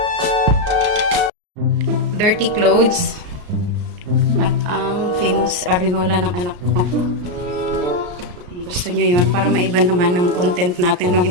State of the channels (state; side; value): late; left; 34 ms